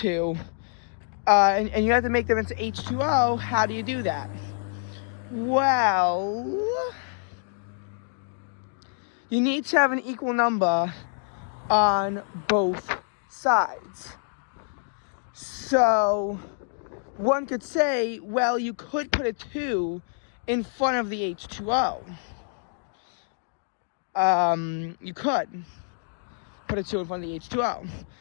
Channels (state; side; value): silent; right; digital silence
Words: and you have to make them into H2O, how do you do that? Well, you need to have an equal number on both sides. So one could say, well, you could put a 2 in front of the H2O. You could put a 2 in front of the H2O.